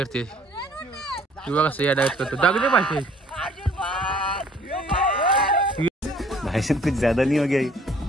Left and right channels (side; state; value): both; normal; correlation 0.57